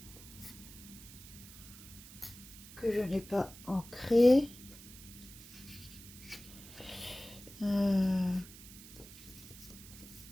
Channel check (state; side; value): noise; right; hiss, 17 dB below the sound